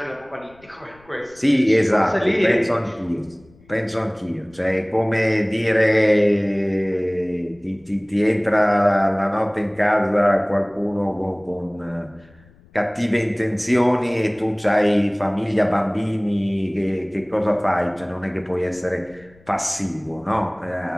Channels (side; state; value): left; noise; rumble, 28 dB below the sound